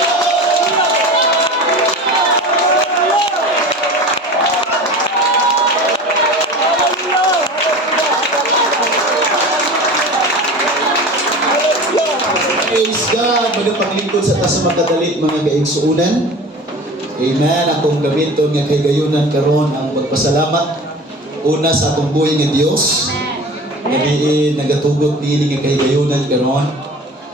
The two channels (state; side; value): normal; both; correlation 0.36